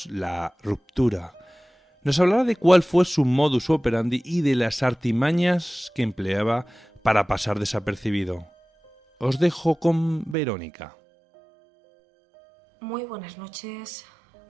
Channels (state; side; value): drops out; left; at 10.4 s